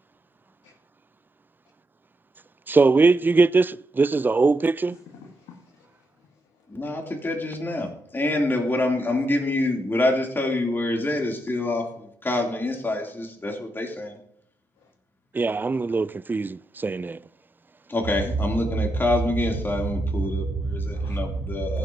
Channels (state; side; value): normal; both; correlation 0.83